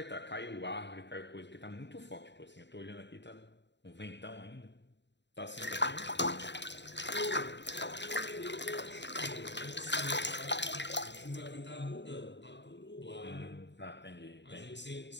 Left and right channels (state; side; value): late; right; 0.52 ms